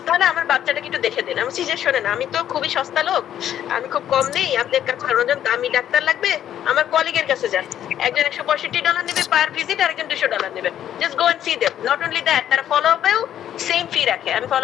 তাহলে আমার বাচ্চাটাকে একটু দেখে দিন। আমি বলছি যে শোনেন, আমি তো খুবই সস্তা লোক, আমি খুব কম নেই, আপনার কাছে একজন দামি ডাক্তার লাগবে, আমার কলিগের কাছে যান, একজন $165 নেবে পার ভিজিট, আর একজন $200 নেবে, just go and see them. Not only that, তারা ফলো আপেও সেম ফি রাখে, আমি ফলো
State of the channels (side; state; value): right; quieter; 10.8 dB